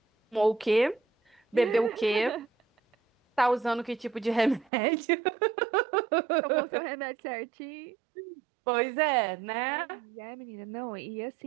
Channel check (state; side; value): drops out; left; at 4.7 s